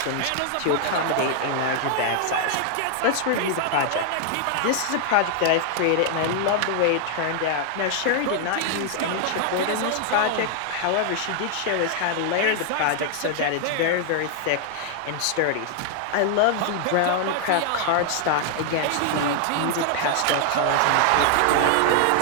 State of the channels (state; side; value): different; both; correlation 0.00